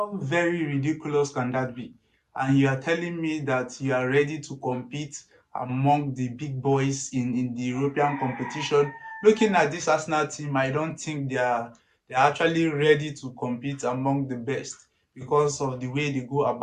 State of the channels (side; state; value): both; identical; correlation 1.00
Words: very ridiculous can that be? And you are telling me that you are ready to compete among the big boys in the European competition. Looking at this Arsenal team, I don't think they're actually ready to compete among the best because of the way they go